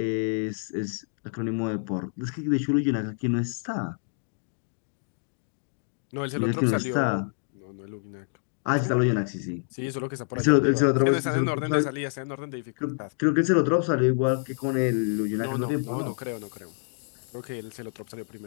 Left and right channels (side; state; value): right; silent; digital silence